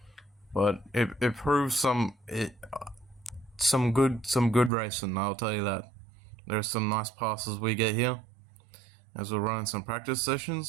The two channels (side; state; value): left; drops out; at 4.7 s